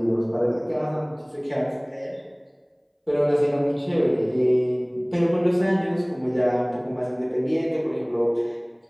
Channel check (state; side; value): identical; both; correlation 1.00